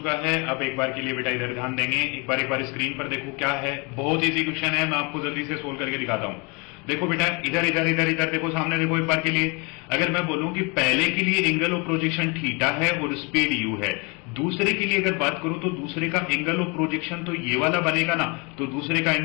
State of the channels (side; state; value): right; quieter; 30.3 dB